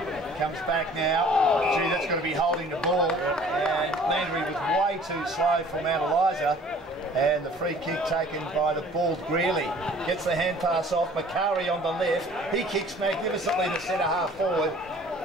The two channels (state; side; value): normal; both; correlation 0.51